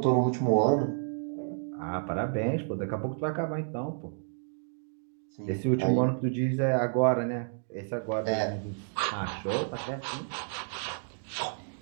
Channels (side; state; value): left; silent; digital silence